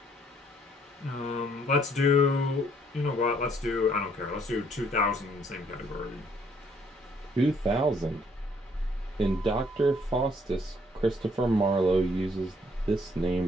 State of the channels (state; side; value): normal; both; correlation 0.65